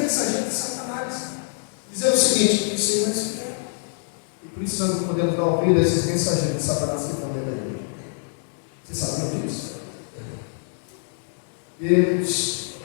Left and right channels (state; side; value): silent; right; digital silence